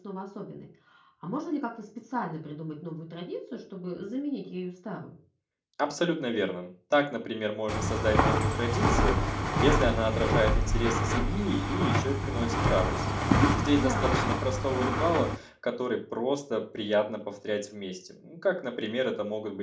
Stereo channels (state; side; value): identical; both; correlation 1.00